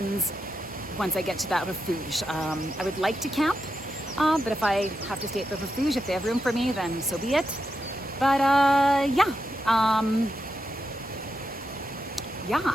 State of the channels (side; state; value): both; normal; correlation 0.85